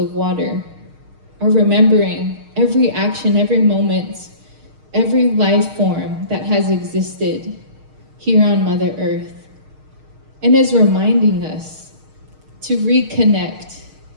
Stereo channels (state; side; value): late; left; 6.5 ms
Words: water are remembering every action, every moment, every life form that has existed here on Mother Earth, and is reminding us to reconnect,